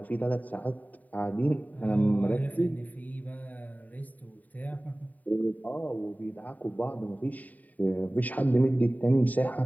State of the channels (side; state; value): right; late; 0.077 ms